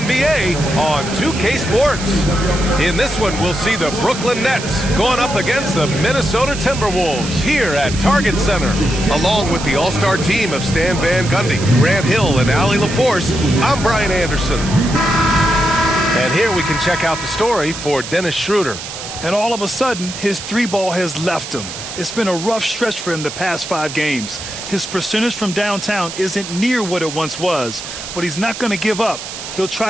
on 2K Sports. In this one, we'll see the Brooklyn Nets going up against the Minnesota Timberwolves here at Target Center. Along with the all-star team of Stan Van Gundy, Grant Hill, and Allie LaForce, I'm Brian Anderson. And here we can check out the story for Dennis Schroeder. And all of a sudden, his three ball has left him. It's been a rough stretch for him the past 5 games. His percentage from downtown isn't near what it once was, but he's not going to give up. He'll try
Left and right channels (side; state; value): right; noise; hiss, 9 dB below the sound